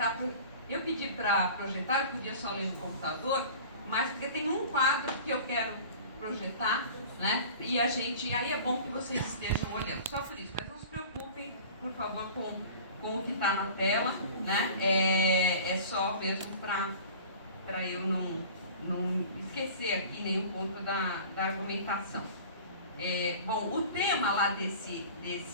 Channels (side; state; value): both; inverted; correlation -0.42